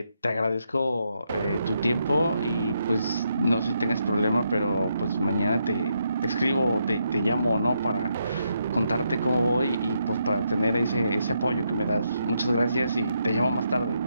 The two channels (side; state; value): both; inverted; correlation -0.79